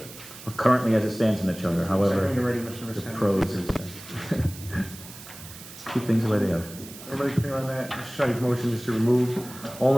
Or currently as it stands in the charter, however, When you're ready, Mr. the Visconti. prose is. Keep things the way they are. Everybody clear on that? Mr. Sadi's motion is to remove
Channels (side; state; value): right; noise; hiss, 16 dB below the sound